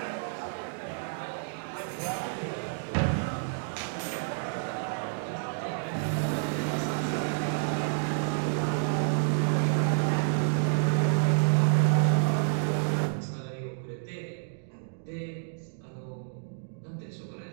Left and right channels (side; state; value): left; silent; digital silence